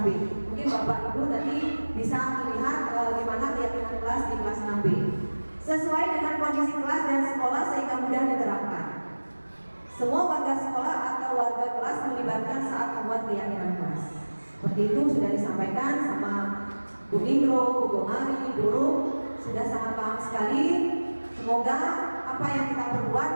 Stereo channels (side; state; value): both; inverted; correlation -1.00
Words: Mungkin Bapak Ibu nanti bisa melihat bagaimana keyakinan kelas di kelas 6B sesuai dengan kondisi kelas dan sekolah sehingga mudah diterapkan. Semua warga sekolah atau warga kelas melibatkan saat membuat keyakinan kelas. Seperti itu sudah disampaikan sama Bu Indro, Bu Gomari, dulu sudah sangat paham sekali. Semoga apa yang kita perbuat